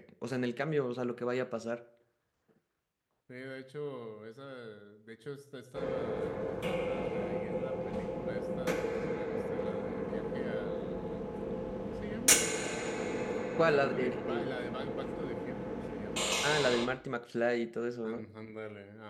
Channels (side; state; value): both; identical; correlation 1.00